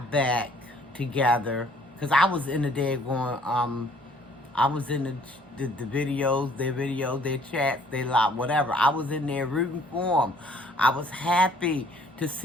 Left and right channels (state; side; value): normal; both; correlation 0.59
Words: back together, because I was in the day going, I was in the videos, their chats, their lot, whatever. I was in there rooting for them. I was happy to